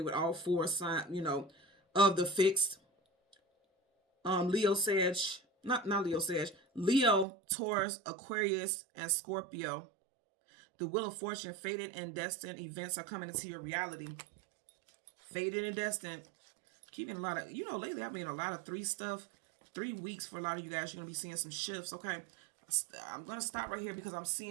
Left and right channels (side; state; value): left; drops out; at 7.2 s